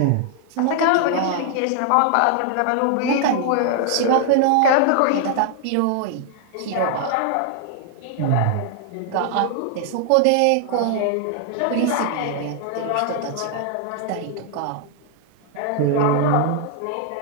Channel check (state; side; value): different; both; correlation 0.00